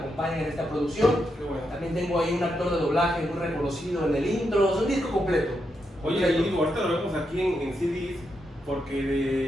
en esta producción. Qué bueno. También tengo ahí un actor de doblaje muy reconocido en el intro. Es un disco completo. Oye, y ahorita lo vemos aquí en CDs,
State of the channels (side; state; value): both; normal; correlation 0.83